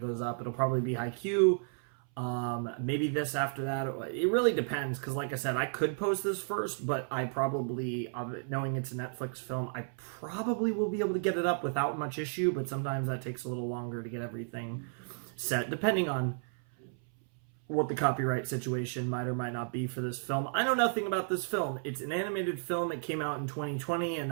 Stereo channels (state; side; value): silent; left; 56 dB below the other